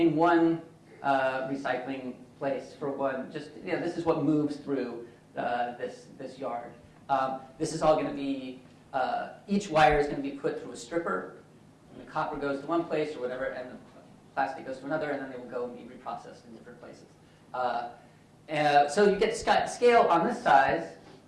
one recycling place for one, this is what moves through this yard. This is all going to be, each wire is going to be put through a stripper, and the copper goes to one place or whatever, and the plastic goes to another, and then they will go and be reprocessed in different places. So you get scale on this size.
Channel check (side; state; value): both; identical; correlation 1.00